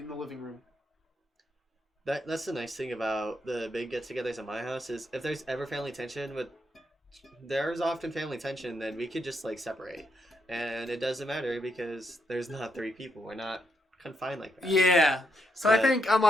the living room. That's the nice thing about the big get-togethers at my house is if there's ever family tension, there's often family tension, then we could just, like, separate. And it doesn't matter because there's not 3 people. We're not confined like that. Yeah. So But I think I'm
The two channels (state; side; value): normal; both; correlation 0.80